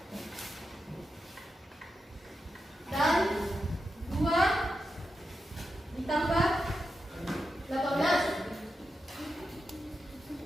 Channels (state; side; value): normal; both; correlation 0.88